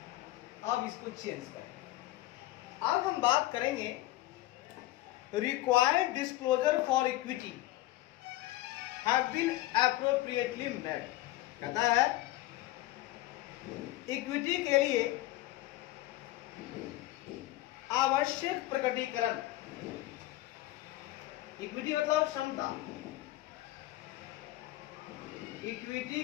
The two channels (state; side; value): quieter; right; 16.6 dB